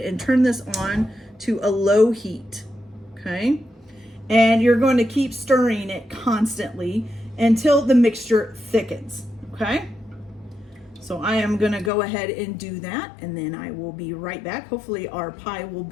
turn this on to a low heat, okay? And you're going to keep stirring it constantly until the mixture thickens, okay? So I am gonna go ahead and do that, and then I will be right back. Hopefully our pie will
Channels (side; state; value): right; drops out; at 11.9 s